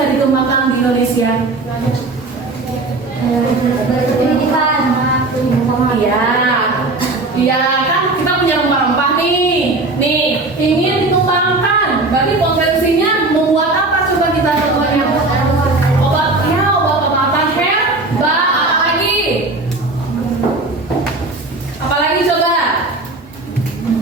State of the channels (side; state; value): left; quieter; 3.2 dB